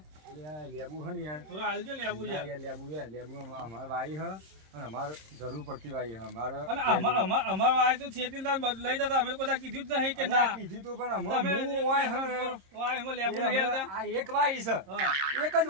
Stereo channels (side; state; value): left; late; 26 ms